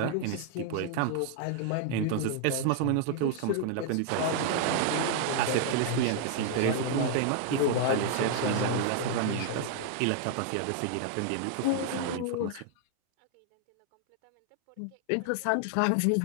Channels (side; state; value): both; different; correlation 0.00